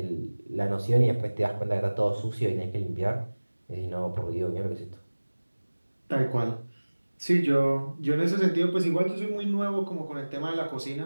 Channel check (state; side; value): inverted; both; correlation -1.00